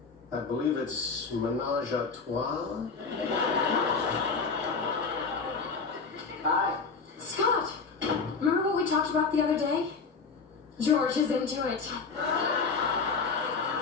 I believe it's menage a trois. Hi. Scott! Remember what we talked about the other day? George is into it.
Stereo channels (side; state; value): right; quieter; 4.8 dB